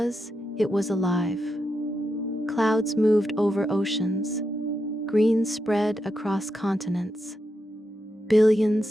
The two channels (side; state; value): both; normal; correlation 0.85